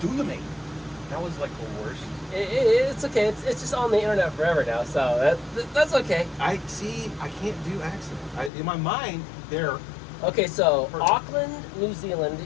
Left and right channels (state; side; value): drops out; right; at 8.5 s